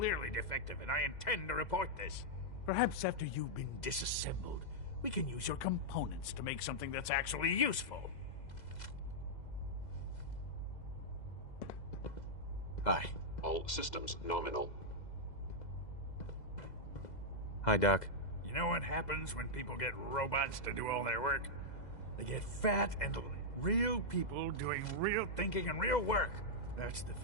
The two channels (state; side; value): late; right; 2.0 ms